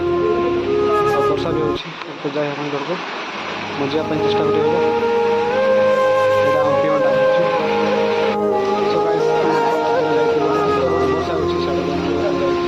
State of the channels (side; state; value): both; identical; correlation 1.00